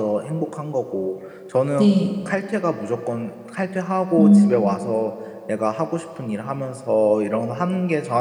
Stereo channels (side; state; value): both; identical; correlation 1.00